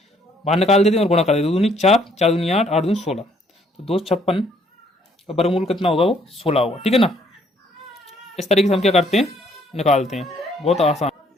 बाहर निकाल देते हैं और गुणा कर देते, 2 दूनी 4, 4 दूनी 8, 8 दूनी 16, तो 256 का वर्गमूल कितना होगा, वो 16 होगा। ठीक है ना, इस तरीके से हम क्या करते हैं, निकालते हैं, बहुत आसान।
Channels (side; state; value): both; normal; correlation 0.65